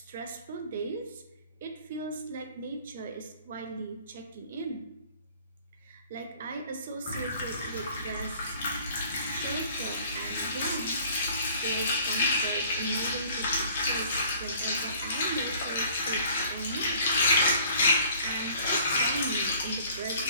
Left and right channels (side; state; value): both; inverted; correlation -0.53